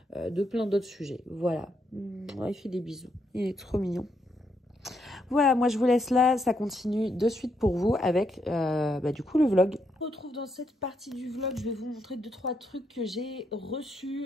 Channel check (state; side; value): normal; both; correlation 0.78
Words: plein d'autres sujets. Voilà, il fait des bisous, il est trop mignon. Voilà, moi je vous laisse là, ça continue de suite pour vous avec du coup le vlog. On se retrouve dans cette partie du vlog, je vais vous montrer 2-3 trucs que j'ai